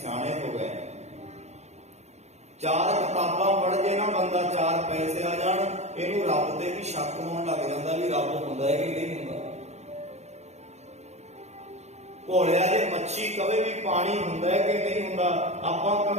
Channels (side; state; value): left; late; 0.32 ms